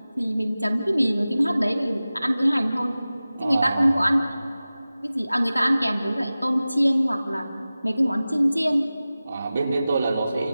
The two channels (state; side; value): inverted; both; correlation -0.96